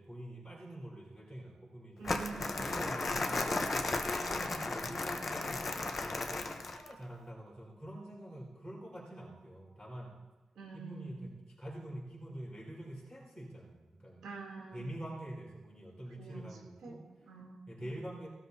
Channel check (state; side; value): normal; both; correlation 0.88